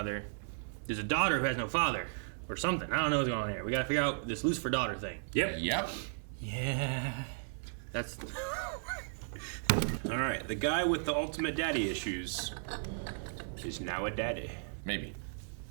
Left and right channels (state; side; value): silent; left; digital silence